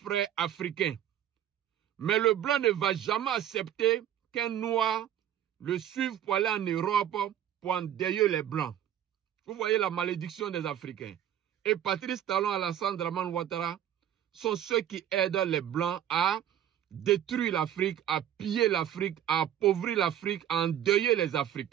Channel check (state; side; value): quieter; left; 10.8 dB